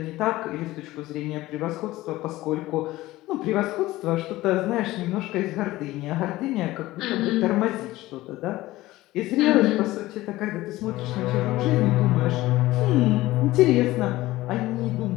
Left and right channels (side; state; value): right; quieter; 17.5 dB